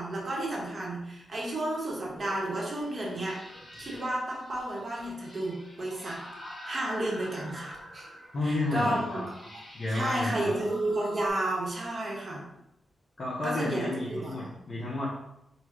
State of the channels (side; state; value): both; normal; correlation 0.86